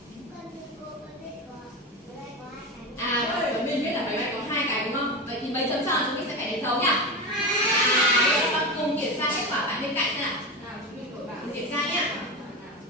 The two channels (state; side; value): normal; both; correlation 0.21